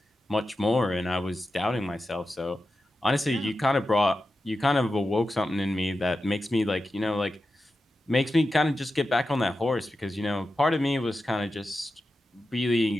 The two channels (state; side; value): normal; both; correlation 0.91